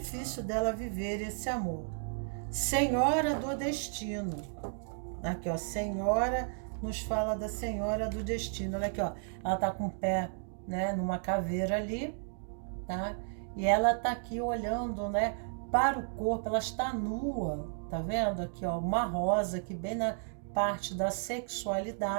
dela viver esse amor. Senhora do destino. Aqui, ó, Senhora, nos fala da Senhora do destino. Olha aqui, ó, ela tá com o pé, né, numa caveira ali, tá? E ela tá aqui olhando, né, para o corpo, ela está nua, tá vendo? Aqui, ó, uma rosa aqui bem na parte da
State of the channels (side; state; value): left; silent; digital silence